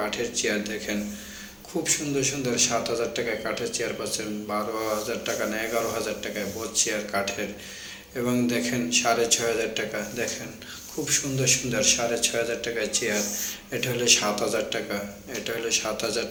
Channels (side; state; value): both; identical; correlation 1.00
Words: চেয়ার দেখেন, খুব সুন্দর সুন্দর 7000 টাকায় কাঠের চেয়ার পাচ্ছেন, 12000 টাকা না 11000 টাকায় বোঝ চেয়ার কাঠের। এবং দেখেন 6500 টাকা। দেখেন খুব সুন্দর সুন্দর 6500 টাকায় চেয়ার। এটা হলো 7000 টাকা, এটা হলো 7000